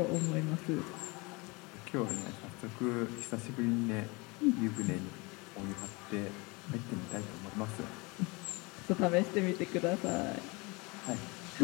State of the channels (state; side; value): quieter; right; 26.7 dB